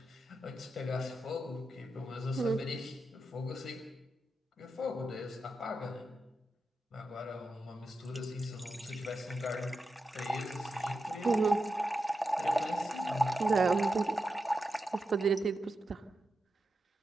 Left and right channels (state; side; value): normal; both; correlation 0.89